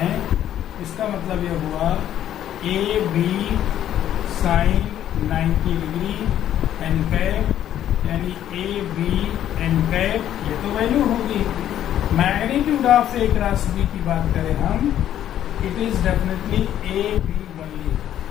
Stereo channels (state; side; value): quieter; right; 11.2 dB